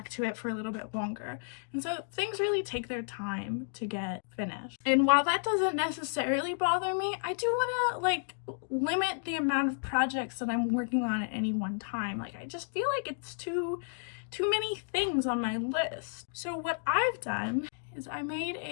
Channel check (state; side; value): silent; right; digital silence